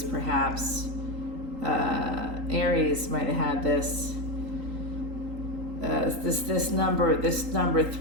perhaps. Aries might have had this. This number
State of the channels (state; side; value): late; left; 3.8 ms